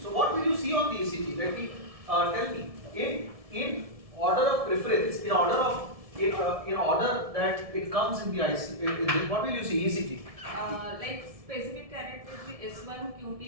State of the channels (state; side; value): late; left; 1.7 ms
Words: So what will you see on the ECG? Let me tell me. In order of preference, in order that it comes in the IC, what will you see? ECG. Like specific characteristics S1,